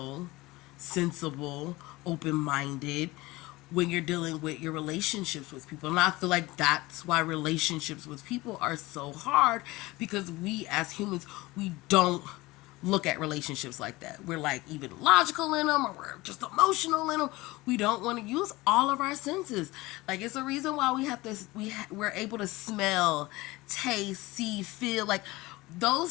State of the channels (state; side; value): quieter; right; 20.6 dB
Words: sensible, open minded when you're dealing with your relationships with people. And I feel like that's why relationships with people are so hard, because we as humans, we don't look at relationships like that. We're like even logical in them, or we're just emotional in them. We don't want to use all of our senses. Like, it's a reason why we have this. We're able to smell, taste, see, feel. Like,